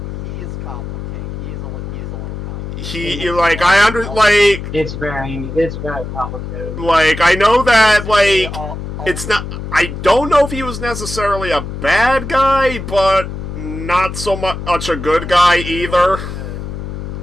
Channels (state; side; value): noise; left; hum, 7 dB below the sound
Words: He is complicated. He is a little complicated. He, like, It's very complicated. like, I know that, like, All- it's not, I don't know if he was necessarily a bad guy, but not so much a good guy either.